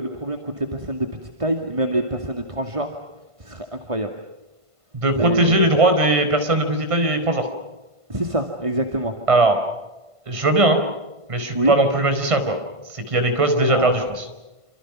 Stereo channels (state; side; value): late; left; 1.5 ms